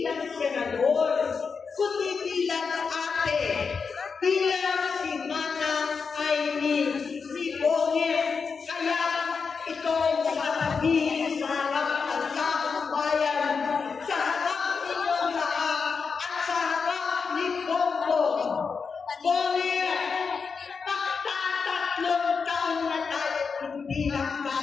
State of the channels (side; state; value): right; quieter; 5.4 dB